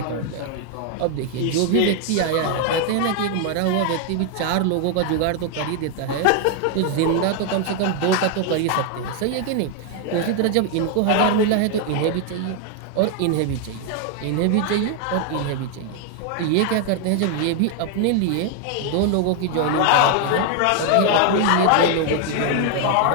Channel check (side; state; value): both; different; correlation 0.00